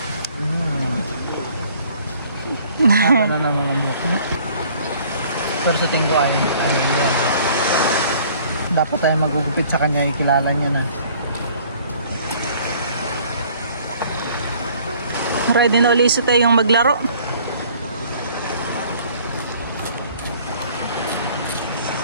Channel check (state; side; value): inverted; both; correlation -0.55